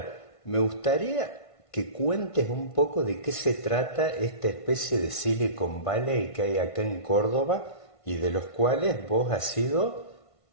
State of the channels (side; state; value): right; late; 1.5 ms